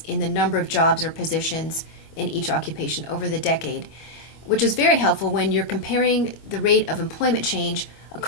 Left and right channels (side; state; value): right; late; 25 ms